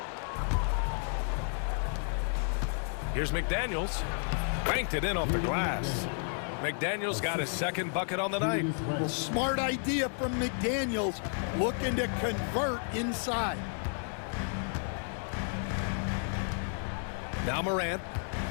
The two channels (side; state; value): right; silent; 56 dB below the other